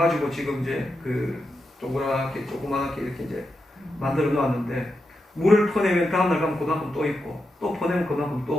지금 이제 그 조그맣게 이렇게 이제 만들어 놓았는데 물을 퍼내면 다음날 가면 그만큼 또 있고 또 퍼내면 그만큼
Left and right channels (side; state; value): both; normal; correlation 0.87